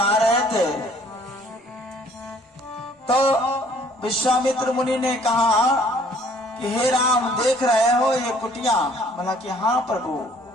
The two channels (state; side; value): normal; both; correlation 0.58